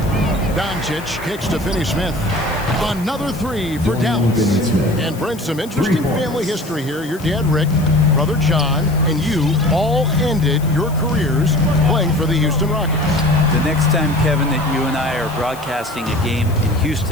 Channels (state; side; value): noise; left; hiss, 19 dB below the sound